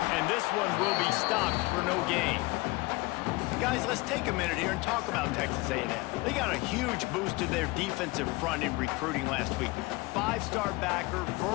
And this one will be stopped for no gain. Guys, let's take a minute here and talk about Texas A&M. They got a huge boost to their defensive front in recruiting last week. 5-star backer,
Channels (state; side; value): quieter; right; 23.0 dB